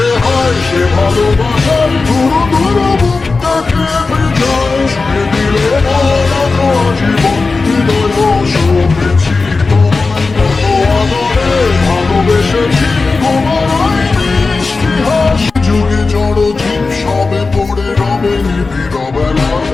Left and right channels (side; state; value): right; quieter; 4.0 dB